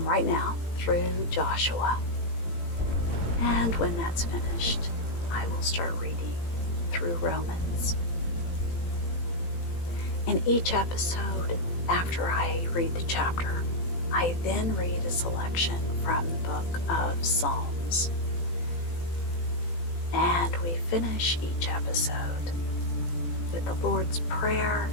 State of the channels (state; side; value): late; right; 18 ms